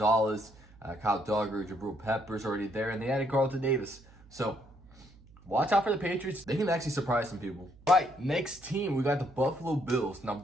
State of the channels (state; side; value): noise; right; hum, 24 dB below the sound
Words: Kyle Duggar, Jabril Peppers already there, and they added Carlton Davis. So watch out for the Patriots. They can actually surprise some people. All right, next team, we got the Buffalo Bills. Now,